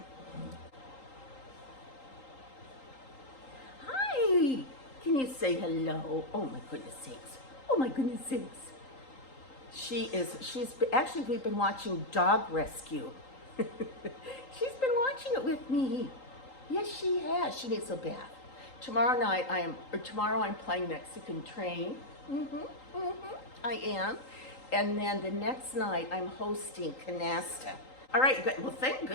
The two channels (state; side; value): late; right; 3.8 ms